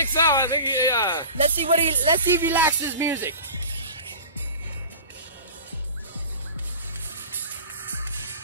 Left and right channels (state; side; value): inverted; both; correlation -0.37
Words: so. I think he, Let's see if he likes his music.